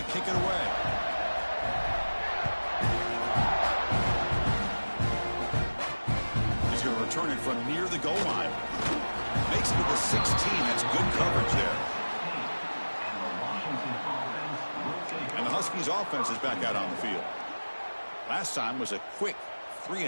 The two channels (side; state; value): both; inverted; correlation -1.00